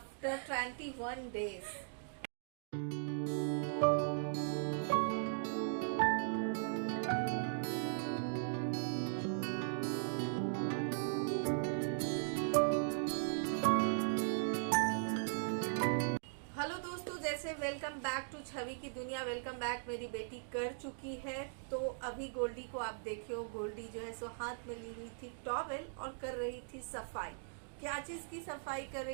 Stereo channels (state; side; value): silent; left; digital silence